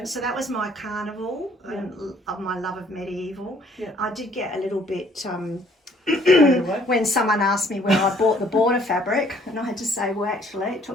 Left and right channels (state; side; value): normal; both; correlation 0.61